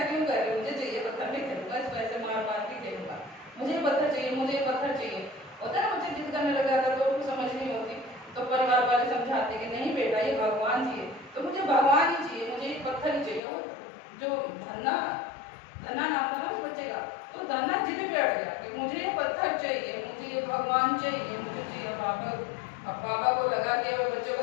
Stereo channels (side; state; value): right; drops out; at 13.4 s